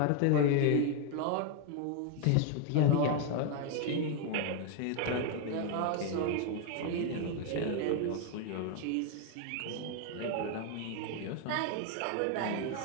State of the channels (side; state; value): both; different; correlation 0.01